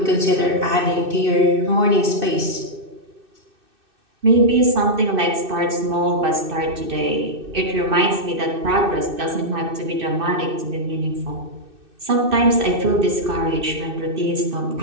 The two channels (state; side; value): late; left; 2.6 ms